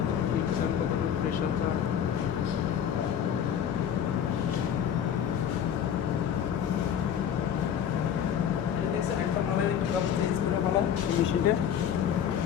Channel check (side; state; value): right; quieter; 8.9 dB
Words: হিট চান, কতটুকু প্রেশার চান। এই দেখছেন একটা মালের একটু ব্যবস্থা ছিল মালা মেশিনটা,